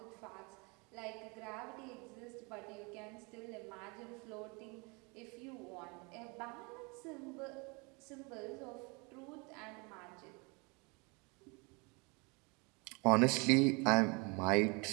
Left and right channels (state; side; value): quieter; left; 29.7 dB